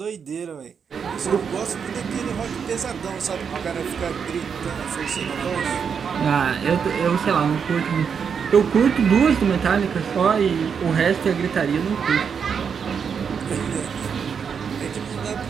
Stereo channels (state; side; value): quieter; left; 6.7 dB